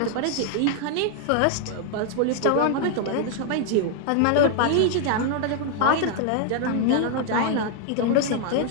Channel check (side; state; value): both; different; correlation 0.00